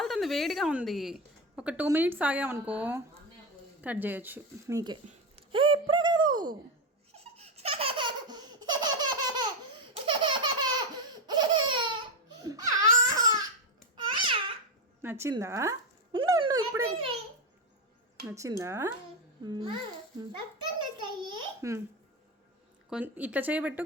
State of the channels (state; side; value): normal; both; correlation 0.12